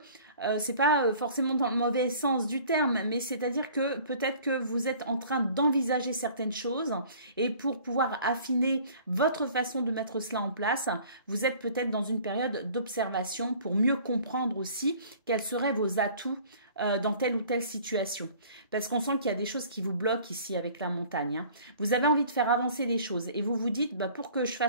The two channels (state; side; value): inverted; both; correlation -0.50